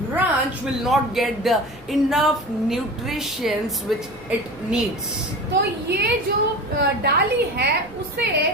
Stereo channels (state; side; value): noise; right; rumble, 24 dB below the sound